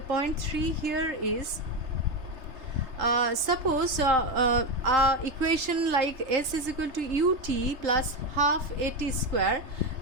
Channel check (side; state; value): left; late; 3.3 ms